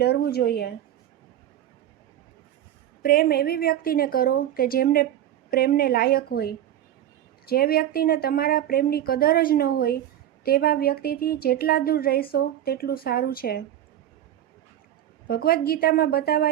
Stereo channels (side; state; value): left; quieter; 11.5 dB